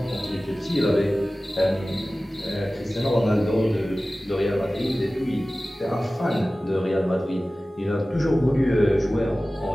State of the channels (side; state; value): both; normal; correlation 0.97